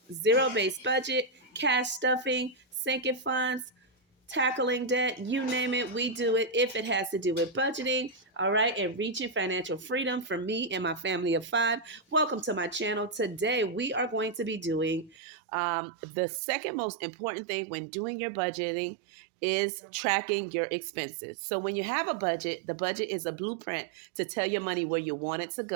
zero-based budget, cash stuffing, sinking funds, tackling debt, you name it, we do it if it has to do with budgeting, all right, and reaching financial freedom for me and my family of five. Welcome to my channel. Today, we are going to be doing the second most important thing when doing your budgeting is tracking your expenses. So when you have a budget, the budget is a blueprint to tell your money where you want it to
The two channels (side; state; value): left; drops out; at 15.2 s